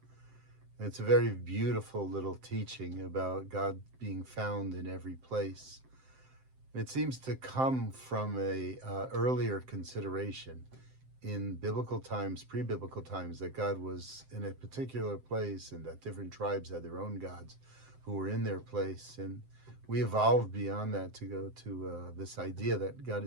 And it's a very beautiful little teaching about God being found in every place. And it seems to come from a earlier consideration in biblical times, pre-biblical times, that God was in a particular place and that different tribes had their own gods who were in their place. And we evolved beyond that to go to this idea that God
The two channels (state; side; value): late; left; 7.7 ms